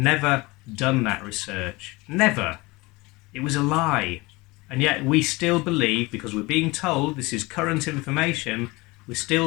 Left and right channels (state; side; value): quieter; right; 23.3 dB